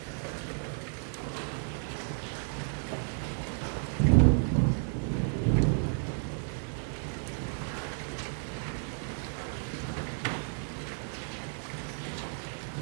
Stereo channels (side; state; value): left; silent; 56 dB below the other